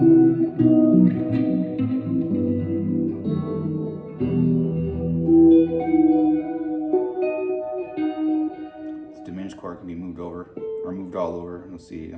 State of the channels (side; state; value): both; identical; correlation 1.00